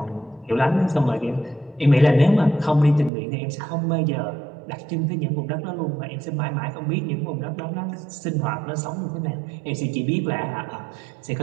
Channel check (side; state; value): left; drops out; at 3.1 s